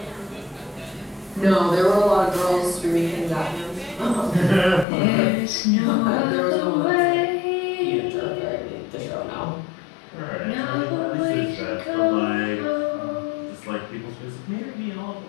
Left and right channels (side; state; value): right; drops out; at 4.9 s